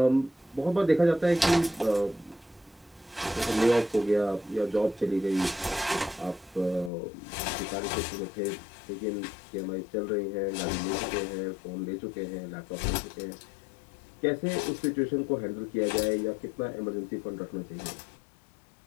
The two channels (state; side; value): drops out; right; at 6.9 s